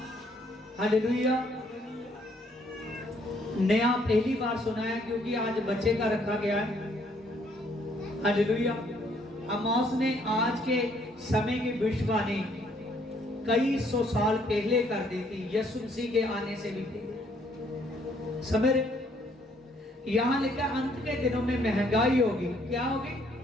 हालेलुया नया पहली बार सुना है, क्योंकि आज बच्चे का रखा गया है। हालेलुया। आमोस ने आज के समय की भविष्यवाणी कई सौ साल पहले कर दी थी, यीशु मसीह के आने से भी पहले। समझ रहे? यहां लिखा अंत के दिनों में महंगाई होगी। क्या होगी?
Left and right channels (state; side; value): normal; both; correlation 0.66